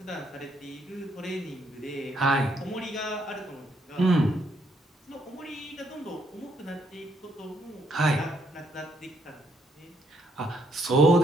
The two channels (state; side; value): normal; both; correlation 0.73